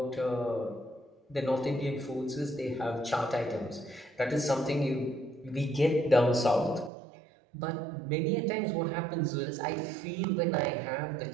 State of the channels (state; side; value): drops out; left; at 6.9 s